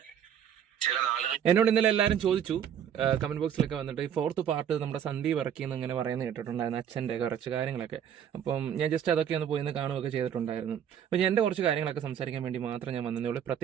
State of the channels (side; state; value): left; quieter; 9.0 dB